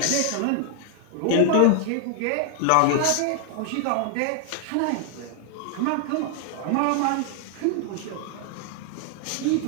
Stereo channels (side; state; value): both; different; correlation 0.00